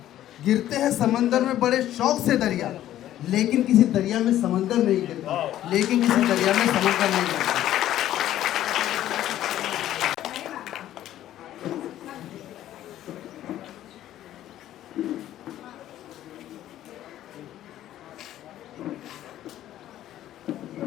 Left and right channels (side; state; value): right; quieter; 12.8 dB